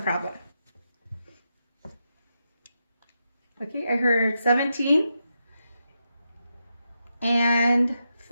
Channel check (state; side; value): inverted; both; correlation -0.85